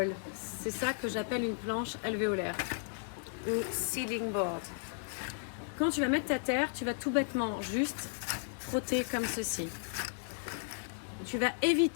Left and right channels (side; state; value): right; silent; digital silence